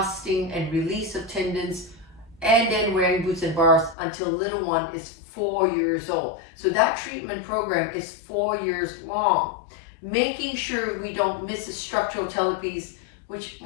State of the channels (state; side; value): drops out; right; at 4.0 s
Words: and release of tendons, and then wearing boots and bars until little one is 4 years old. So that treatment program is 4 years long. Making sure we don't miss the structural talipes, which